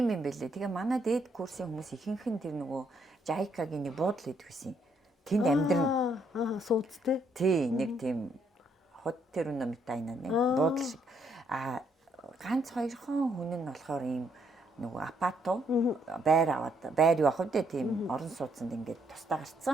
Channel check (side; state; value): both; normal; correlation 0.72